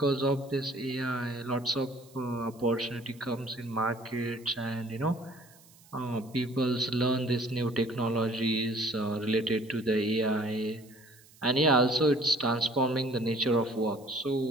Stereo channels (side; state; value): right; noise; hiss, 26 dB below the sound